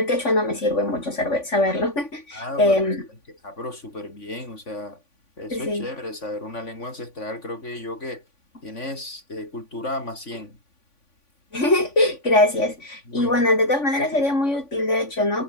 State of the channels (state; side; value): late; right; 3.5 ms